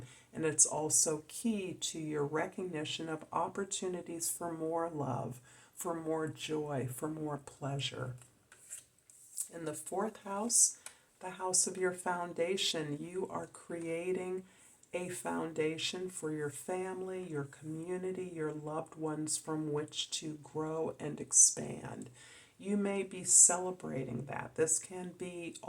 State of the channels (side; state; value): both; identical; correlation 1.00